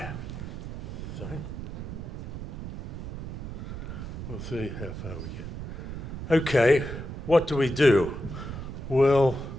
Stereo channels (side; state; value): right; noise; rumble, 7 dB below the sound